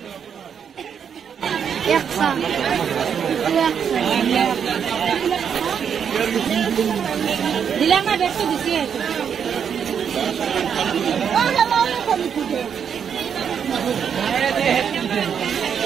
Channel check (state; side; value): quieter; left; 7.6 dB